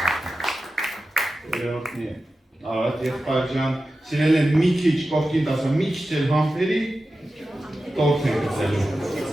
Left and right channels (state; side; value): normal; both; correlation 0.93